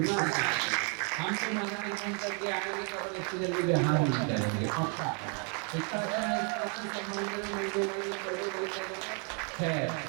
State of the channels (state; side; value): quieter; left; 36.9 dB